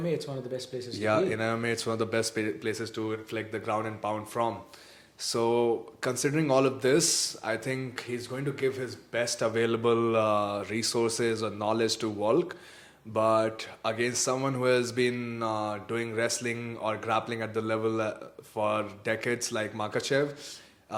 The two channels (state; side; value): identical; both; correlation 1.00